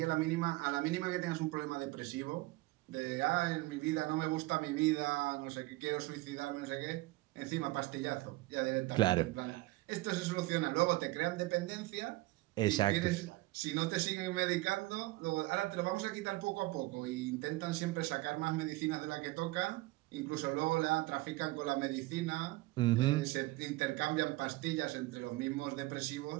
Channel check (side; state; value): left; quieter; 20.3 dB